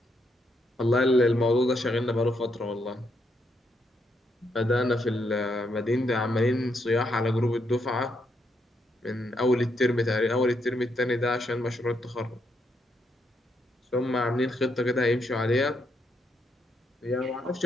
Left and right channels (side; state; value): both; normal; correlation 0.78